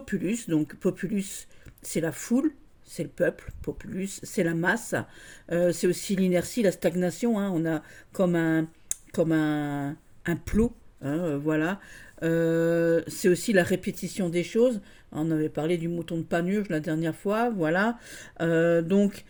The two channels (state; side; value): identical; both; correlation 1.00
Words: Donc populus c'est la foule, c'est le peuple. Populus c'est la masse. C'est aussi l'inertie, la stagnation. Hein. On a comme un plot. Hein, voilà. C'est aussi la répétition des choses. On avait parlé du mouton de Panurge la dernière fois. Voilà. Donc